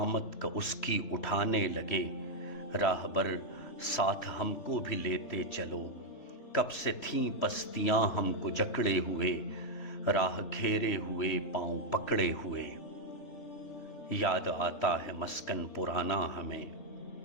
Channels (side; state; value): right; late; 3.4 ms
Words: کا اس کی اٹھانے لگے۔ راہبر ساتھ ہم کو بھی لیتے چلو، کب سے تھیں پستیاں ہم کو جکڑے ہوئے، راہ گھیرے ہوئے پاؤں پکڑے ہوئے۔ یاد آتا ہے مسکن پرانا ہمیں،